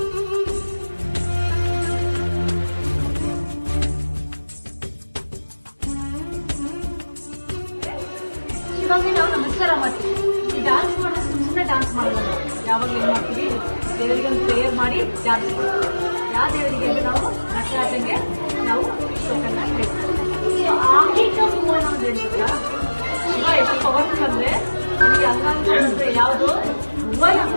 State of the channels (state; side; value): inverted; both; correlation -1.00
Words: ಇವಾಗ ನಾವು ನಮಸ್ಕಾರ ಮಾಡ್ತೀವಿ. ಈ ಡ್ಯಾನ್ಸ್ ಮಾಡೋದು ಸುಮ್ಮನೆ ಡ್ಯಾನ್ಸ್ ಮಾಡೋದು. ಯಾವಾಗ ಏನು ಮಾಡ್ತೀವಿ? ದೇವರಿಗೆ ಒಂದು ಪ್ರೇಯರ್ ಮಾಡಿ ಡ್ಯಾನ್ಸ್ ಮಾಡ್ತೀವಿ. ಯಾವ ದೇವರಿಗೆ ಅಂದ್ರೆ ನಾವು ನಟರಾಜಂಗೆ ನಾವು ಶ್ಲೋಕನ ಹೇಳ್ತೀವಿ. ಆಂಗಿಕ ಮೂವಣ್ಣ ಅಂತ ಹೇಳ್ತೀರಾ? ಶಿವ ಎಷ್ಟು ಪವರ್ಫುಲ್ ಅಂದ್ರೆ ನನಗೆ ಅಂಗಾಂಗ ಯಾವುದು ಭುವನ,